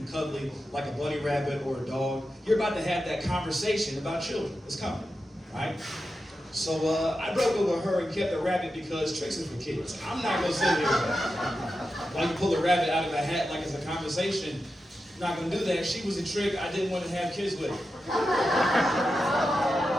cuddly, like a bunny rabbit or a dog, you're about to have that conversation about children. It's coming, right? So I broke up with her and kept the rabbit because tricks is for kids. I'm not going to sit here while you pull a rabbit out of a hat like it's a conversation. I'm not going to do that. She was a trick I didn't want to have kids with.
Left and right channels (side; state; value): both; normal; correlation 0.90